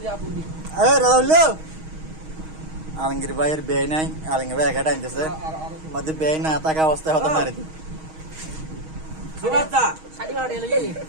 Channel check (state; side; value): late; left; 6.3 ms